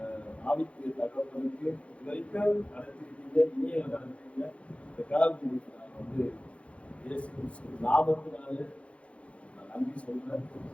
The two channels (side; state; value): right; late; 0.062 ms